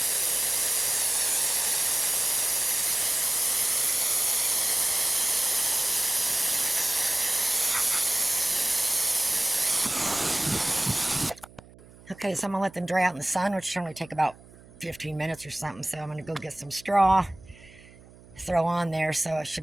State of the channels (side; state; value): right; noise; hum, 23 dB below the sound